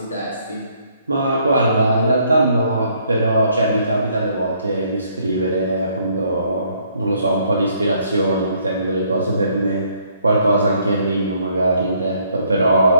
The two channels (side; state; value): both; inverted; correlation -0.67